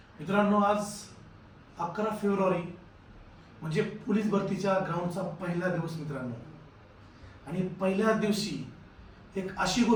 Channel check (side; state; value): both; identical; correlation 1.00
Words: आज 11 फेब्रुवारी म्हणजे पोलीस भरतीच्या ग्राउंडचा पहिला दिवस मित्रांनो. आणि पहिल्या दिवशी एक अशी